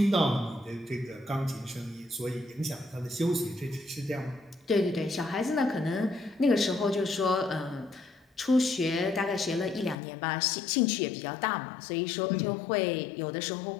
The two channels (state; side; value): drops out; right; at 10.0 s